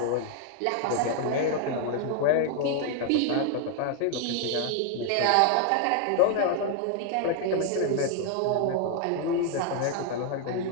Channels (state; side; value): different; both; correlation 0.00